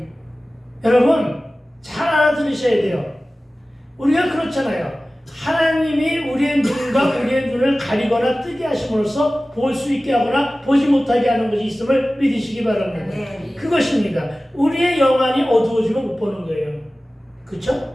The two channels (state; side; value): normal; both; correlation 0.97